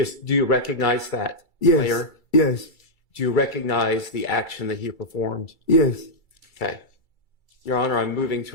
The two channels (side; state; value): right; late; 2.3 ms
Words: do you recognize that Yes. player? Yes. Do you recognize the action that he performed? Yes. Okay. Your Honor, I'm moving